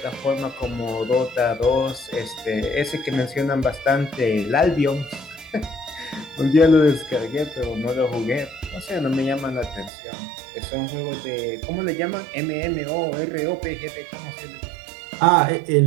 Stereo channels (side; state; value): left; drops out; at 9.9 s